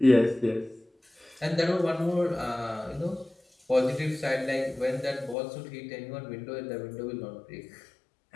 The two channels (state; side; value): drops out; right; at 5.4 s